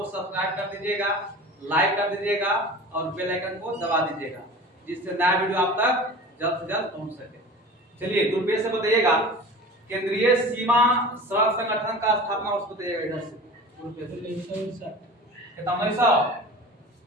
सब्सक्राइब कर दीजिएगा, लाइक कर दीजिएगा और बेल आइकन को दबा दीजिएगा, जिससे नया वीडियो आप तक जल्द से जल्द पहुंच सके। चलिए गुरुपेश से बताइएगा, केंद्रीय सीमा सड़क संगठन का स्थापना वर्ष बताइएगा। इधर से कितना 1900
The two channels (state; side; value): normal; both; correlation 0.37